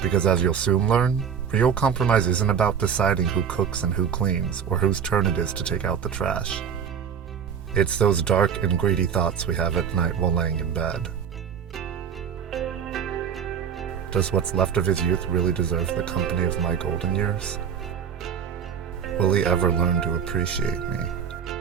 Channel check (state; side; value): quieter; left; 7.5 dB